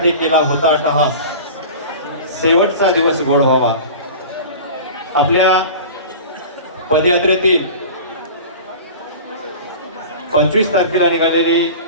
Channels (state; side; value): inverted; both; correlation -0.36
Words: केला होता अट्टहास, शेवटचा दिवस गोड व्हावा. आपल्या पदयात्रेतील 25 तारखेला निघालेली